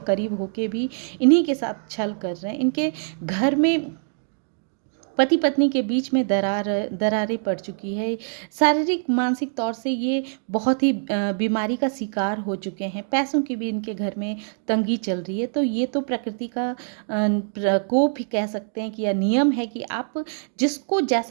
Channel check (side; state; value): left; silent; digital silence